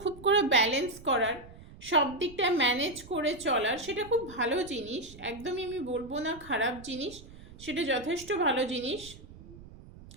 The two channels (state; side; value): noise; right; rumble, 18 dB below the sound